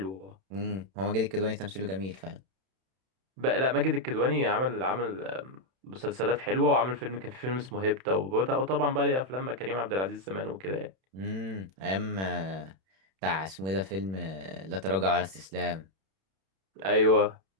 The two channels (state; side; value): late; left; 31 ms